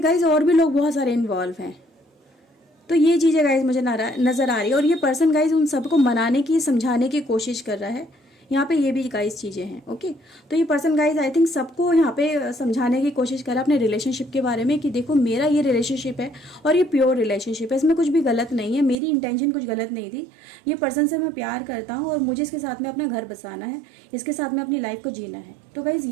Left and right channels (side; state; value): left; drops out; at 18.9 s